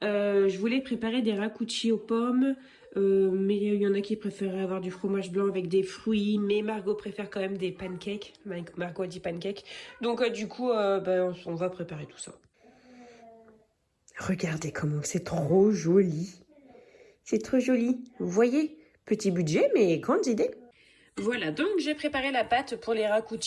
je voulais préparer des rakuchi aux pommes, mais il y en a qui préféraient avoir du fromage blanc avec des fruits, mais Margot préfère quand même des pancakes. Margot a dit pancakes. Donc du coup, on va préparer tout ça. Regardez comment c'est trop joli. C'est trop joli. Vous voyez, petit budget, mais grande idée. Voilà, donc j'ai préparé la pâte pour les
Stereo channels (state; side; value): identical; both; correlation 1.00